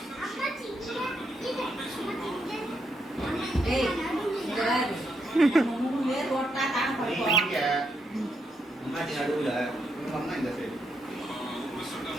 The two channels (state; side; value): normal; both; correlation 0.79